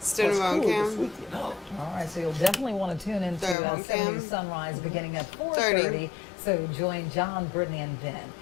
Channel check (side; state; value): right; drops out; at 3.6 s